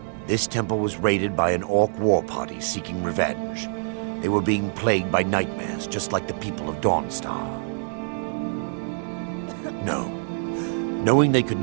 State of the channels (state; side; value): silent; left; digital silence